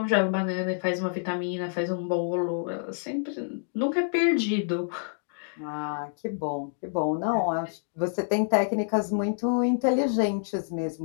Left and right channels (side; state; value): right; silent; digital silence